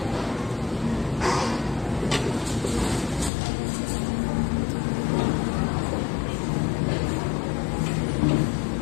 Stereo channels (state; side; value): drops out; right; at 3.3 s